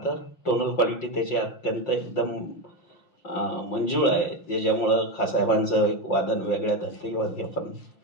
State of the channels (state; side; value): late; right; 5.6 ms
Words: टोनल क्वालिटी त्याची अत्यंत एकदम मंजूळ आहे, ज्याच्यामुळं खासाहेबांचं एक वादन वेगळ्या धर्तीवर आपण